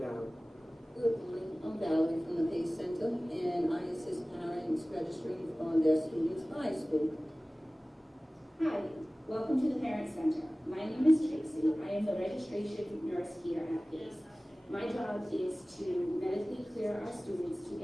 Good morning, I'm Valerie from the PACE Center, and I assist parents registering on their students' high school. Hi, welcome to the Parent Center. My name is Tracy. I am the registration nurse here at PACE. My job is to medically clear our students to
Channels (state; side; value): normal; both; correlation 0.98